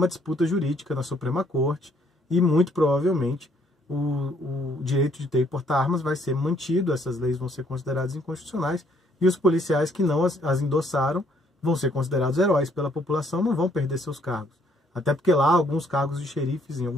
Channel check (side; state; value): both; normal; correlation 0.66